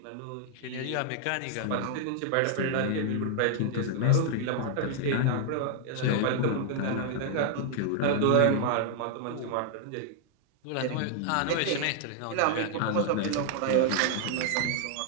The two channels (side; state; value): both; different; correlation 0.00